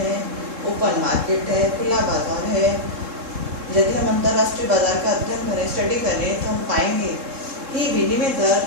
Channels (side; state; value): left; late; 3.7 ms